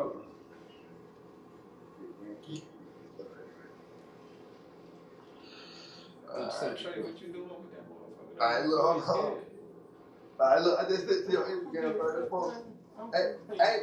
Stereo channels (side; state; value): both; identical; correlation 1.00